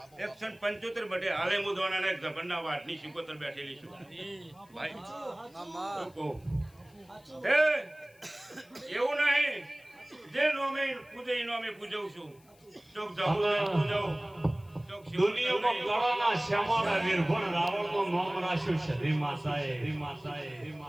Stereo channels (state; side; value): noise; left; hiss, 30 dB below the sound